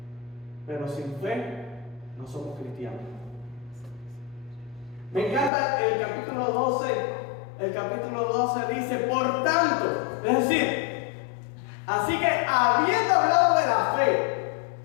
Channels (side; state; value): right; drops out; at 5.5 s